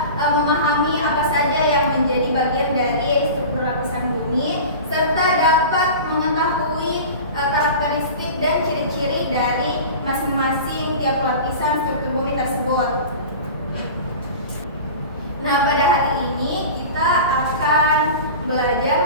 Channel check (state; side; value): inverted; both; correlation -0.34